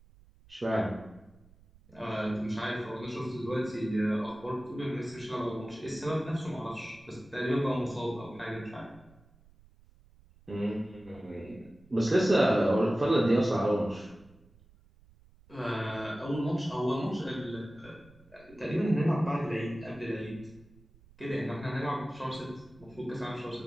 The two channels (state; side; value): noise; right; rumble, 26 dB below the sound